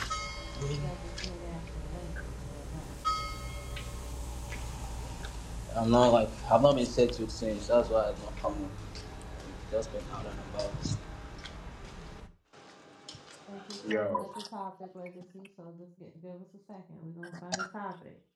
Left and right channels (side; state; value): both; identical; correlation 1.00